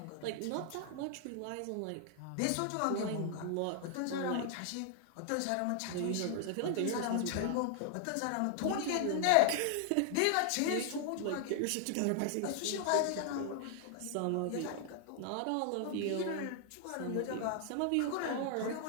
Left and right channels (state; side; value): different; both; correlation 0.00